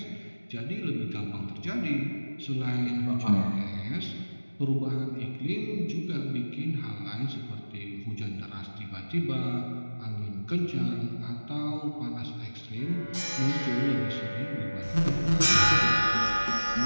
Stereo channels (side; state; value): both; inverted; correlation -1.00